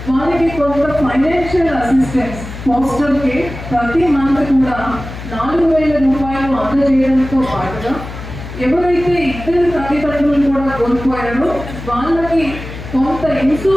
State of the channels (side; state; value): left; noise; hum, 11 dB below the sound